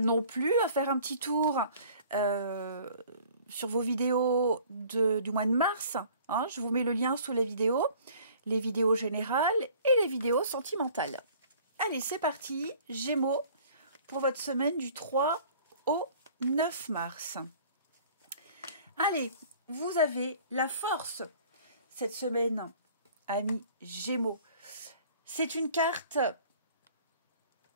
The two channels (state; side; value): inverted; both; correlation -0.51